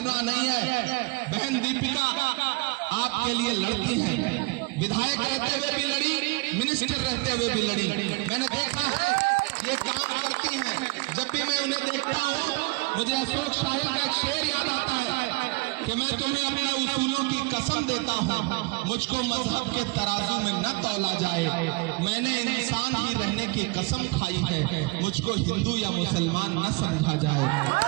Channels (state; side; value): quieter; left; 25.9 dB